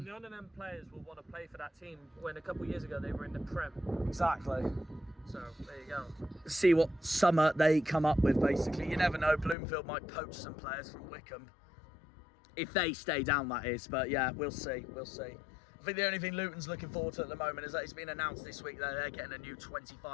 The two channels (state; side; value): drops out; right; at 9.6 s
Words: None of them players will want to play for that team when a couple of years ago they were in the Prem. Exactly. So there you go. See what summer they come up with, basically. You never know, Bloomfield might poach some players from Wickham. If they stay down, that is. But yeah, we'll see. We'll see. I think the only thing Luton's looking forward to at the moment is that it's been announced this week that they're getting a new